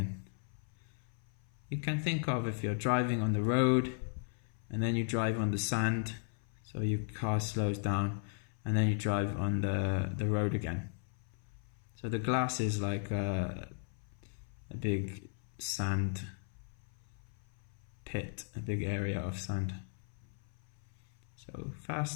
You can think of if you're driving on the road and then you drive on the sand, so your car slows down, and then you drive on the road again. So the glass is like a big sand pit, a big area of sand. So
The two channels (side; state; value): right; silent; 53 dB below the other